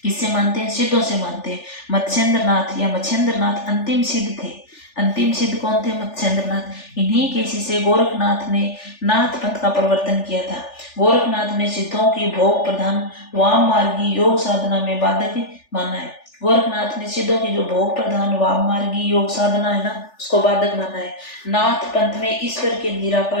किससे मानते हैं? सिद्धों से मानते हैं। मत्स्येंद्र नाथ या मत्स्येंद्र नाथ अंतिम सिद्ध थे। अंतिम सिद्ध कौन थे? मत्स्येंद्र नाथ। इन्हीं के शिष्य गोरखनाथ ने नाथ पंथ का प्रवर्तन किया था। गोरखनाथ ने सिद्धों की भोग प्रधान वाम मार्गी योग साधना में बाधक माना है। गोरखनाथ ने सिद्धों की जो भोग प्रधान वाम मार्गी योग साधना है ना, उसको बाधक माना है। नाथ पंथ में ईश्वर के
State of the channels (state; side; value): late; right; 3.4 ms